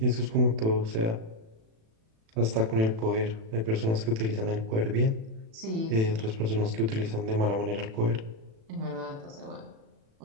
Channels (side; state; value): left; late; 36 ms